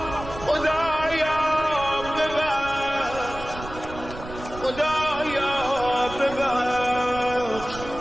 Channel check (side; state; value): right; noise; rumble, 13 dB below the sound